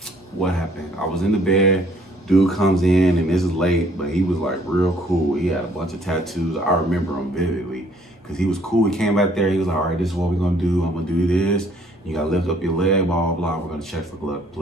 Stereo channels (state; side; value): normal; both; correlation 0.61